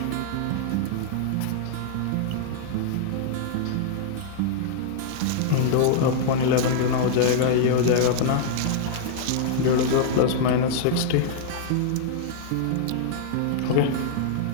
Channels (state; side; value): different; both; correlation -0.01